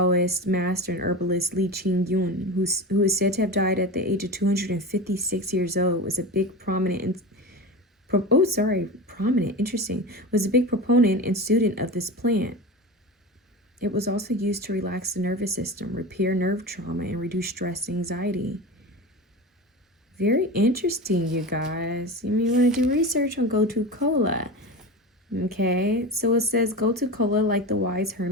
master and herbalist Li Qingyun, who is said to have died at the age of 256 years old. Was a big prominent, interesting. Was a big proponent and student of this plant. It was also used to relax the nervous system, repair nerve trauma, and reduce stress and anxiety. Very interesting, you guys. You want to do research on gotu kola. Okay, so it says gotu kola, like the wise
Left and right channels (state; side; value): normal; both; correlation 0.27